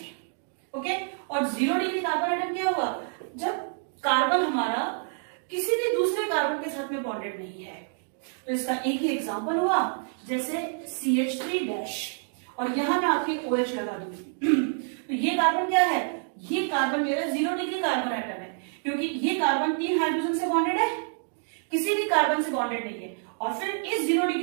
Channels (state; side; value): silent; left; 60 dB below the other